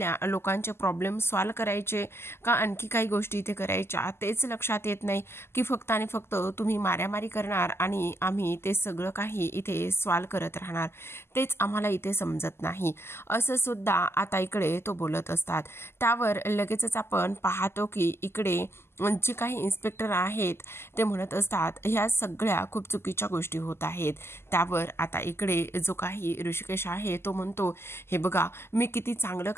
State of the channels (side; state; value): right; late; 0.12 ms